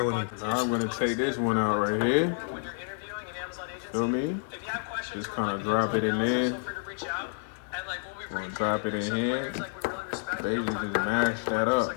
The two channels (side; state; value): right; silent; digital silence